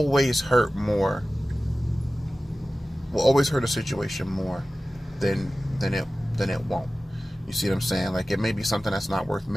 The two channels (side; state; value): both; normal; correlation 0.96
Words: hurt more. Will always hurt a situation more than it won't. You see what I'm saying? Like, it may be something that's not worth